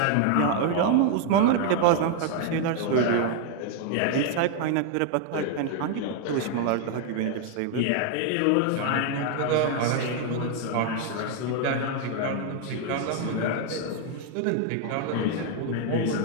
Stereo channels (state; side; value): different; both; correlation 0.00